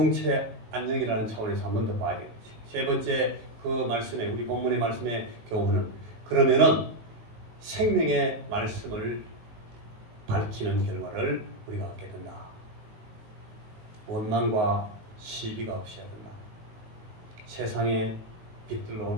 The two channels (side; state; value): left; late; 19 ms